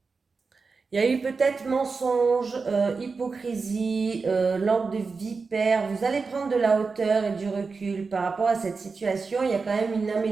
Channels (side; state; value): left; quieter; 4.6 dB